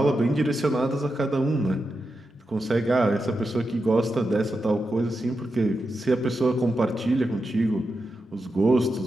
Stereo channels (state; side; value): normal; both; correlation 0.88